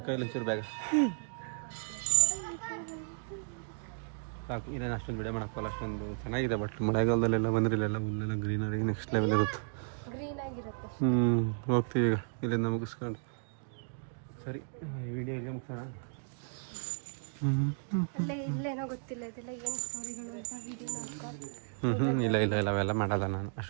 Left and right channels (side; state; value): left; silent; digital silence